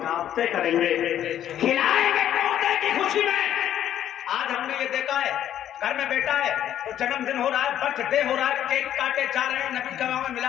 करेंगे, खिलाएंगे पोते की खुशी में। आज हमने ये देखा है, घर में बेटा है तो जन्मदिन हो रहा है, बर्थडे हो रहा है, केक काटे जा रहे हैं, नबी का में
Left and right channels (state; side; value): quieter; right; 11.0 dB